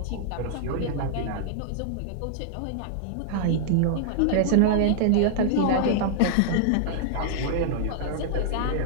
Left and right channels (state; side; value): different; both; correlation -0.01